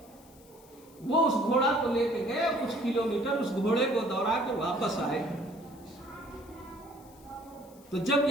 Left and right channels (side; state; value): left; noise; hiss, 26 dB below the sound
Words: وہ اس گھوڑا کو لے کے گئے، کچھ کلومیٹر اس گھوڑے کو دوڑا کے واپس آئے. تو جب